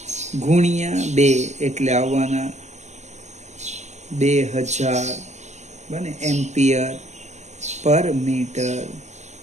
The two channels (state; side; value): late; left; 0.33 ms